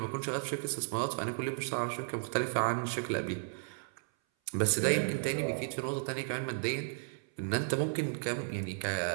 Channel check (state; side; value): silent; left; 55 dB below the other